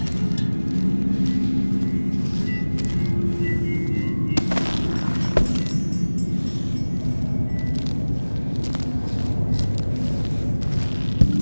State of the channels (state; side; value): inverted; both; correlation -1.00